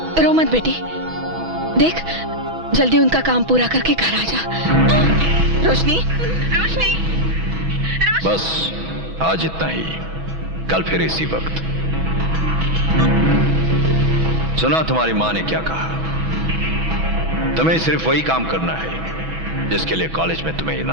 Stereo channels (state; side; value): late; left; 6.1 ms